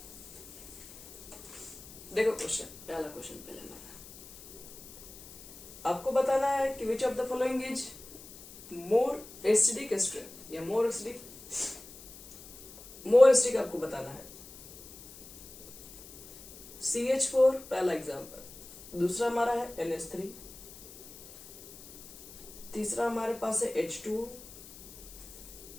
देखो क्वेश्चन, पहला क्वेश्चन पहले हमारा आपको बताना है कि which of the following is more acidic strength, या मोर एसिडिक आपको बताना है। CH4 पहला एग्जांपल, दूसरा हमारा है NH3, तीसरा हमारे पास है H2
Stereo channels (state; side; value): noise; left; hiss, 18 dB below the sound